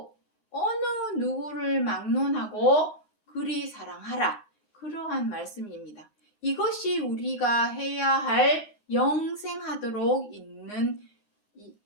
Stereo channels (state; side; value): late; right; 9.6 ms